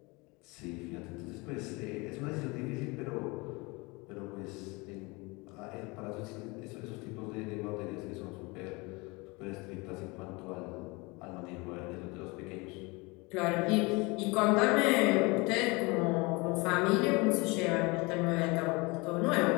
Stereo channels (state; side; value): quieter; right; 26.1 dB